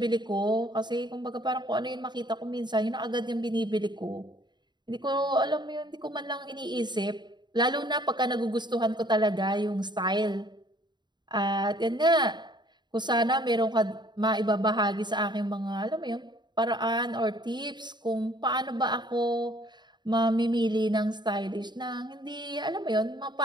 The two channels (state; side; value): late; left; 0.21 ms